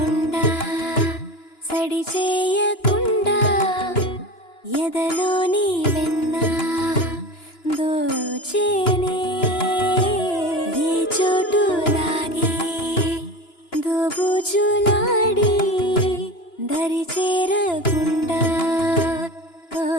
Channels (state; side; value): late; right; 2.9 ms